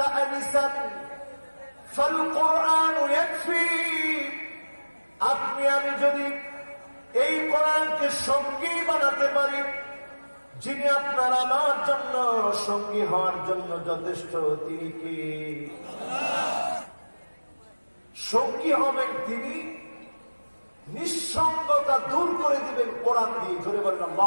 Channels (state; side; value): inverted; both; correlation -1.00